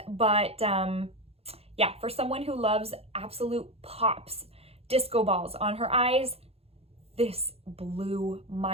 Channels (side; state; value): left; late; 0.29 ms